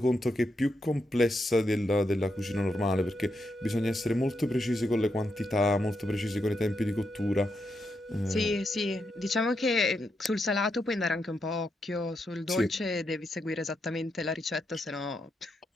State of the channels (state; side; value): normal; both; correlation 0.83